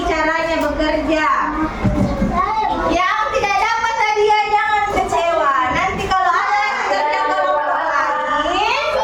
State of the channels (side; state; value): both; identical; correlation 1.00